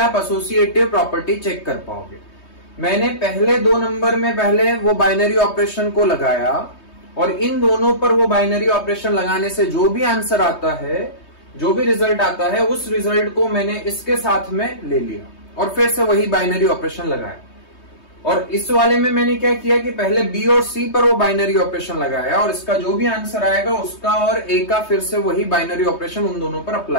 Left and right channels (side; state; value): right; late; 3.2 ms